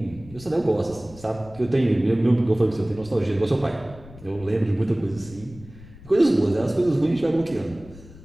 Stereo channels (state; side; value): noise; left; rumble, 19 dB below the sound